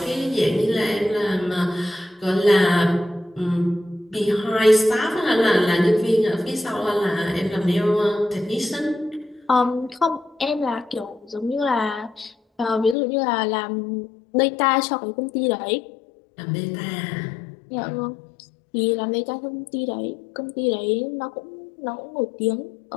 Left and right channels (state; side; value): drops out; right; at 13.0 s